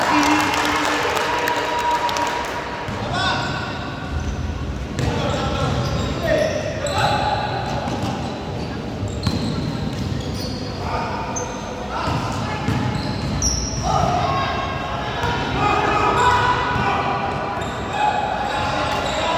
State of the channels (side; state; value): both; identical; correlation 1.00